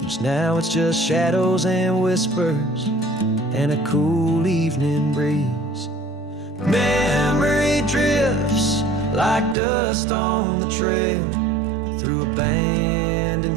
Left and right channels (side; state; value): left; drops out; at 9.6 s